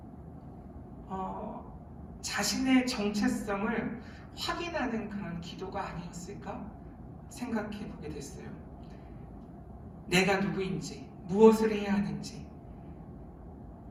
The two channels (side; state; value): both; identical; correlation 1.00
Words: 자신의 정체성을 확인하는 그런 기도가 아니었을까 생각해 보게 됐어요. 내가 누구인지, 무엇을 해야 하는지,